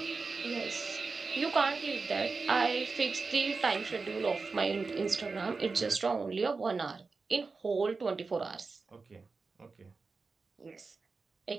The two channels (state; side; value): quieter; left; 4.3 dB